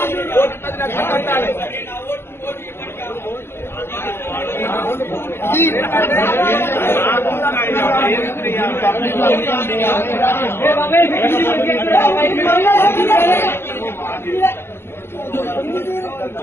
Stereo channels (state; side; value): late; right; 0.11 ms